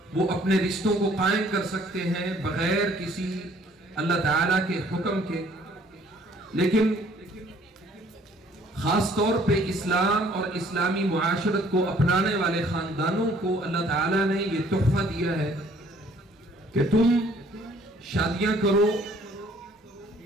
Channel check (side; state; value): both; normal; correlation 0.59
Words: وہ اپنے رشتوں کو قائم کر سکتے ہیں بغیر کسی اللہ تعالیٰ کے حکم کے. لیکن خاص طور پہ اسلام اور اسلامی معاشرت کو اپنانے والے خاندانوں کو اللہ تعالیٰ نے یہ تحفہ دیا ہے کہ تم شادیاں کرو،